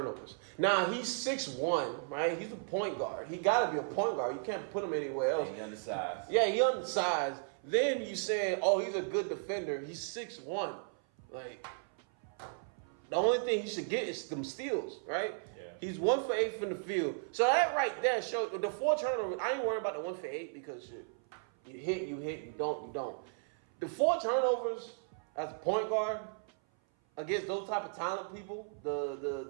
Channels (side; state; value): left; silent; 54 dB below the other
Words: Now he's 6'1", right? He's a point guard. He gotta be a point guard. You can't put him anywhere else. He undersized. Yeah, he undersized. Then you saying, he's a good defender. He's 6'1". The only thing he should get is some steals, right? Yeah. He's 1 for 8 from the field. So that right there shows the 4 turnovers. I ain't worried about the 1 for 8 because shit, you hit, you don't. The 4 turnovers as a point guard against those type of talent people,